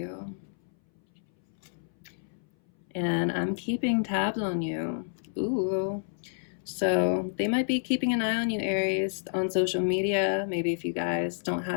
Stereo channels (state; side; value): silent; right; 58 dB below the other